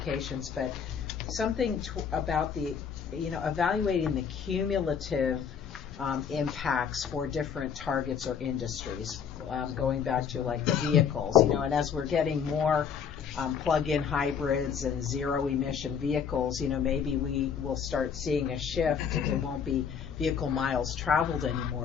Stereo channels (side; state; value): right; quieter; 7.2 dB